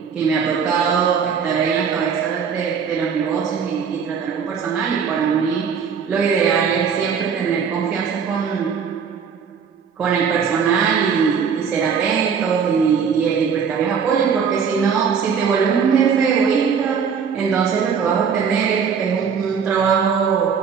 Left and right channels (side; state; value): left; quieter; 6.6 dB